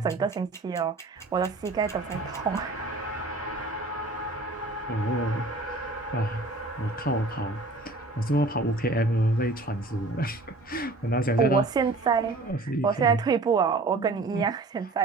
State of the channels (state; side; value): quieter; left; 3.1 dB